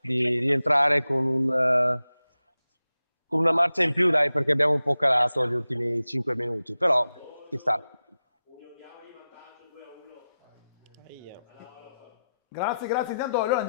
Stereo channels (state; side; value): inverted; both; correlation -0.92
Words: di rientrare con una marcia in più dai, perché abbiamo un po' calato gli ultimi 5 minuti, però ci sta. Grazie. Intanto allora